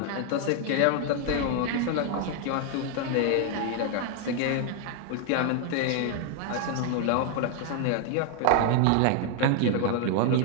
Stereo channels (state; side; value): different; both; correlation 0.00